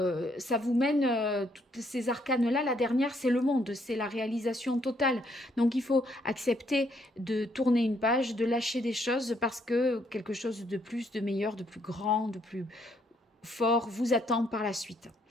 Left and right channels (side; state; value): both; normal; correlation 0.70